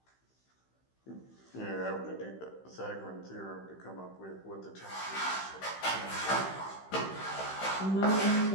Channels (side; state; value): right; late; 16 ms